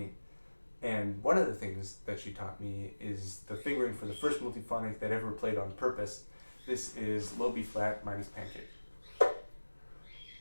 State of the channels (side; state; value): both; inverted; correlation -1.00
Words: And one of the things that she taught me is the fingering for the first multiphonic that ever played on purpose. This is low B flat minus pancake.